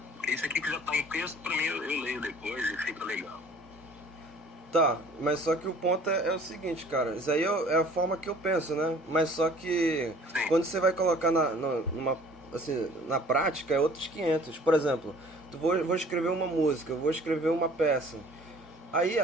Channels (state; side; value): normal; both; correlation 0.51